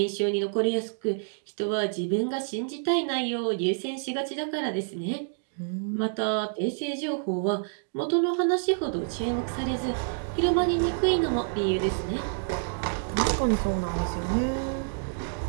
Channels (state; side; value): silent; left; digital silence